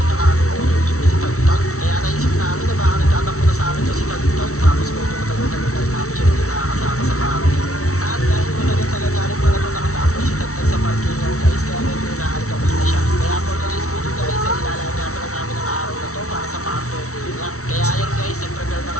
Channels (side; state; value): right; late; 0.64 ms